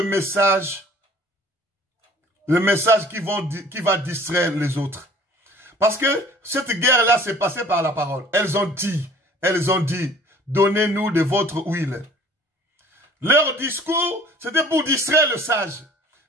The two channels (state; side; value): normal; both; correlation 0.52